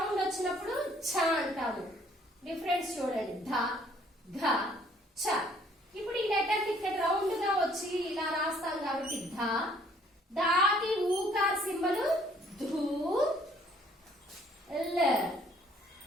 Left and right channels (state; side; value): normal; both; correlation 0.61